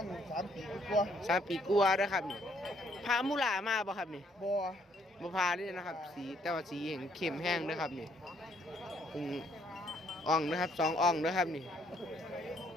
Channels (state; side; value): normal; both; correlation 0.67